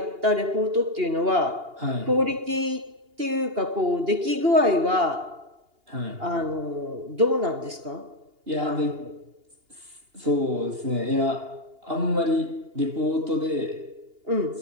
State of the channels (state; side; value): late; left; 2.8 ms